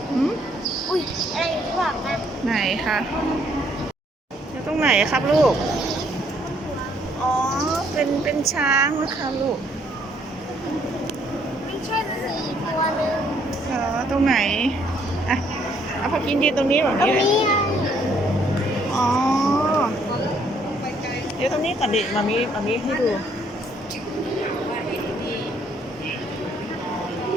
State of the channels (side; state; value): both; normal; correlation 0.67